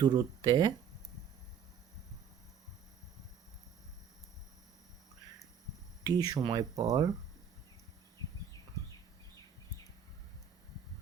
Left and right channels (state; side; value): quieter; left; 7.5 dB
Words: টি সময় পর